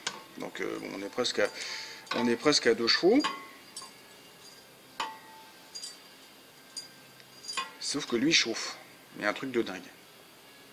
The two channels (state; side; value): identical; both; correlation 1.00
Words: Donc bon, on est presque à 2 chevaux. Sauf que lui chauffe. Il y a un truc de dingue.